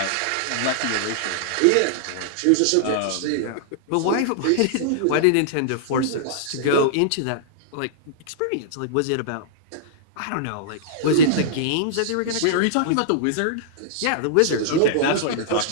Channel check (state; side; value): different; both; correlation -0.02